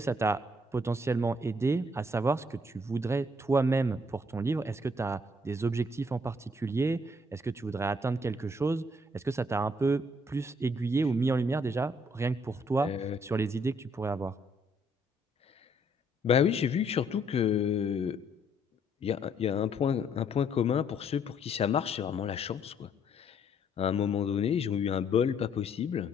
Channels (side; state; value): both; normal; correlation 0.67